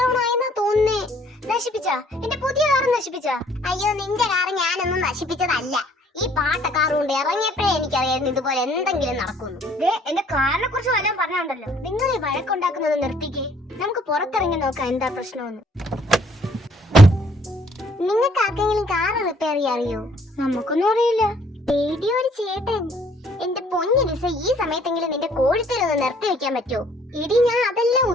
ആയെന്നാ തോന്നുന്നേ. നശിപ്പിച്ചാ? എന്റെ പുതിയ കാർ നശിപ്പിച്ചാ? അയ്യോ, നിന്റെ കാർ ഞാനൊന്നും നശിപ്പിച്ചതല്ല. ഈ പാട്ട കാർ കൊണ്ട് ഇറങ്ങിയപ്പോഴേ എനിക്കറിയായിരുന്നു ഇതുപോലെ എന്തെങ്കിലും നടക്കുന്നു. എന്റെ കാറിനെ കുറിച്ച് വല്ലതും പറഞ്ഞുണ്ടല്ലോ. നിങ്ങൾ ഈ വഴക്കുണ്ടാക്കുന്നത് നിർത്തിക്കേ. നമുക്ക് പുറത്തിറങ്ങി നോക്കാം എന്താ പ്രശ്നമെന്ന്. നിങ്ങൾക്ക് ആർക്കെങ്കിലും കാർ റിപ്പയർ ചെയ്യാൻ അറിയോ? നമുക്കൊന്നും അറിയില്ല. റേഡിയോ ഒരു ചേട്ടൻ. എന്റെ പൊന്നിരിസ, ഈ സമയത്തെങ്കിലും നിന്റെ കോഴിത്തരൊന്ന് നിർത്തി വെക്കാൻ പറ്റുമോ? ഇടി, ഞാൻ അതെല്ലാം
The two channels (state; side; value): normal; both; correlation 0.61